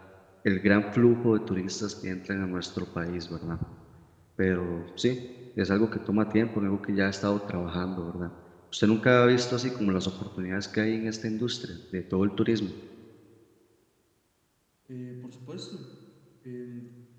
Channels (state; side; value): identical; both; correlation 1.00